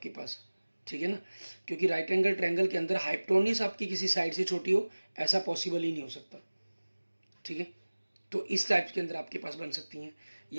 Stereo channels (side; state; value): both; inverted; correlation -1.00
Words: पास, ठीक है ना, क्योंकि राइट एंगल ट्रायंगल के अंदर हाइपोटेन्यूज आपकी किसी साइड से छोटी हो, ऐसा पॉसिबल ही नहीं हो सकता, ठीक है। तो इस टाइप के अंदर आपके पास बन सकती हैं।